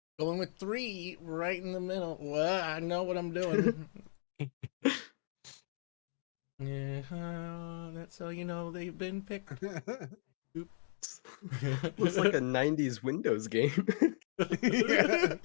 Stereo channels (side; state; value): right; silent; digital silence